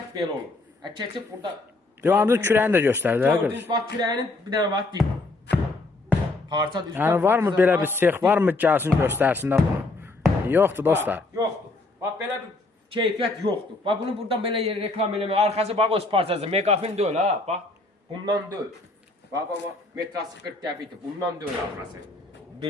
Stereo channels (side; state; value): right; quieter; 3.2 dB